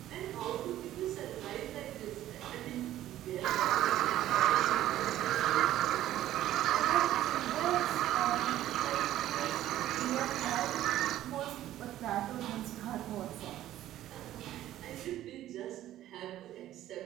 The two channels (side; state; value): left; quieter; 13.3 dB